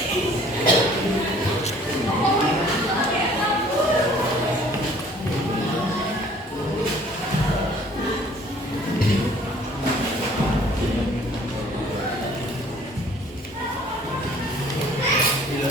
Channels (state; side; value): normal; both; correlation 0.54